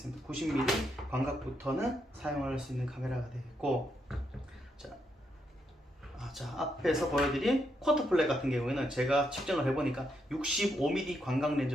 90mm 광각부터는 사용을 할 수 있는 카메라가 되겠고, 자, 앞에서 보여드린 쿼터 플랫 같은 경우에는 제가 측정을 해보니까 65mm 광각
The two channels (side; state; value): both; normal; correlation 0.80